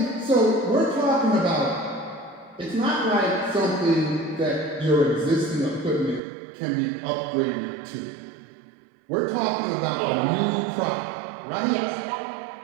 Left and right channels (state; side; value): drops out; left; at 6.2 s